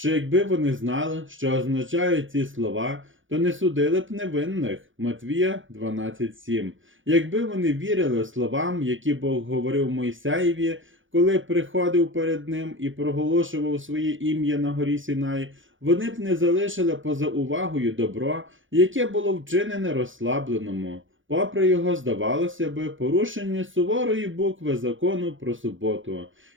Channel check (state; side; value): late; left; 0.57 ms